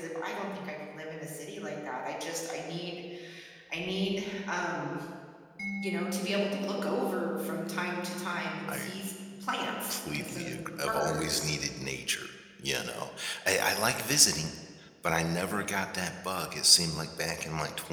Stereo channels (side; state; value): both; identical; correlation 1.00